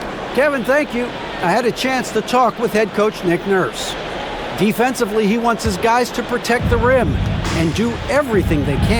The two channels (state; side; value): identical; both; correlation 1.00